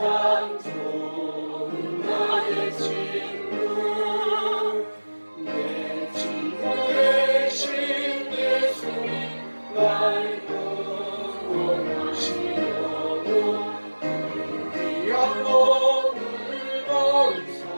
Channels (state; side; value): inverted; both; correlation -1.00